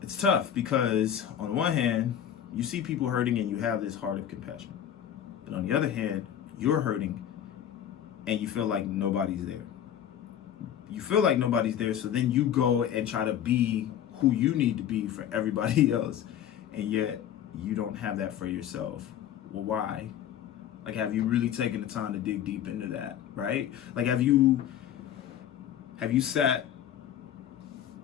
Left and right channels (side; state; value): right; quieter; 10.1 dB